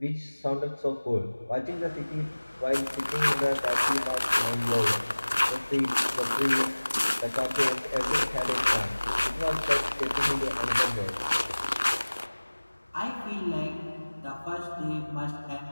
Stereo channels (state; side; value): inverted; both; correlation -1.00